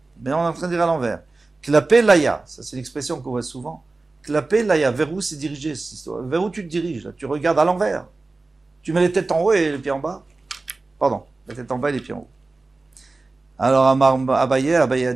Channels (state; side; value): quieter; left; 3.5 dB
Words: Mais on est en train de dire à l'envers. Klapé laya, ça c'est l'expression qu'on voit souvent. Klapé laya, vers où c'est dirigé cette histoire? Vers où tu te diriges là? Tu regardes à l'envers. Tu mets les têtes en haut et les pieds en bas. Pardon, la tête en bas et les pieds en haut. Alors Abaye a